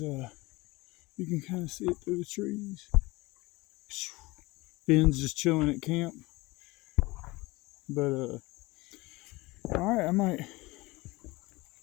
you can kind of see it through the trees. Finn's just chilling at camp. But all right, I might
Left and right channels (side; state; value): right; quieter; 22.0 dB